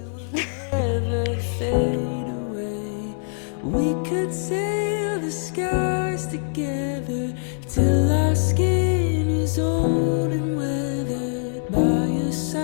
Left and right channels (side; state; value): right; silent; digital silence